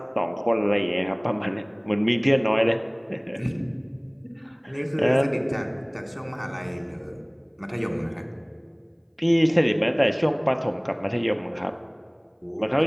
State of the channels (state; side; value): identical; both; correlation 1.00